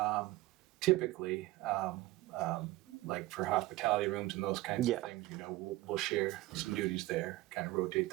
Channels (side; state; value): left; quieter; 18.3 dB